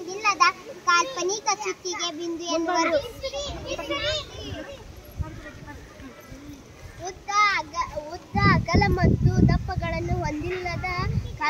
ಕಾಲ್ಪನಿಕ ಚುಕ್ಕಿಗೆ ಬಿಂದು ಎನ್ನುವರು. ಉದ್ದ, ಅಗಲ ಮತ್ತು ದಪ್ಪಗಳನ್ನು ಹೊಂದಿಲ್ಲದ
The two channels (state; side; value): identical; both; correlation 1.00